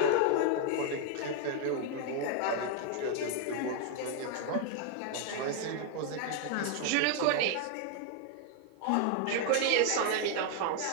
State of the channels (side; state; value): both; different; correlation 0.00